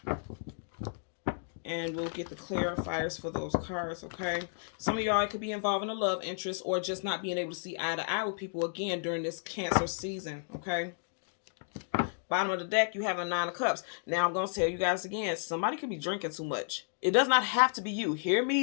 And we'll get the clarifiers for those cards, okay? Some of y'all could be involved in a love interest or just not being able to see eye to eye with people again during this Cancer season, okay? Bottom of the deck, you have a 9 of Cups. Now, I'm going to tell you guys again, somebody could be drinking too much. It does not have to be you. Hear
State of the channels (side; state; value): right; silent; digital silence